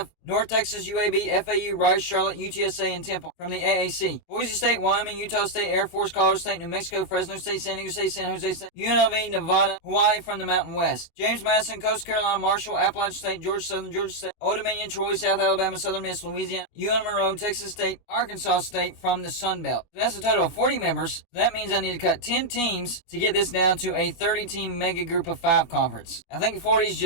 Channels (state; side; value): late; right; 24 ms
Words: North Texas, UAB, FAU, Rice, Charlotte, UTSA, and Temple from the AAC. Boise State, Wyoming, Utah State, Air Force, Colorado State, New Mexico, Fresno State, San Diego State, San Jose State, UNLV, Nevada, Hawaii from the Mountain West. James Madison, Coastal Carolina, Marshall, Appalachian State, Georgia Southern, Georgia State, Old Dominion, Troy, South Alabama, Southern Miss, Louisiana, UL Monroe, Texas State, Arkansas State from the Sun Belt. So that's a total of 40 members. That means I need to cut 10 teams to get this down to a 30-team mega Group of 5 conference. I think 40 is